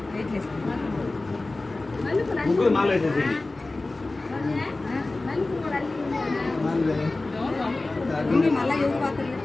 ముగ్గురు మాల వేసేసి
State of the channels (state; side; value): quieter; right; 3.1 dB